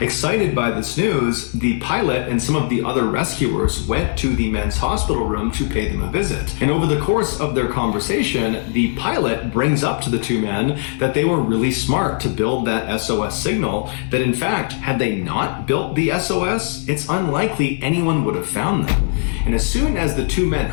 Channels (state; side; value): silent; right; 58 dB below the other